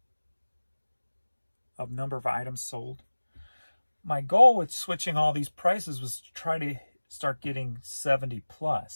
of number of items sold. My goal with switching all these prices was to try to start getting 70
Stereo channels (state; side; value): inverted; both; correlation -1.00